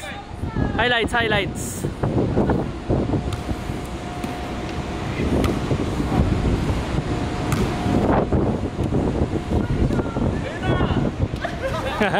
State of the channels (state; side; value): identical; both; correlation 1.00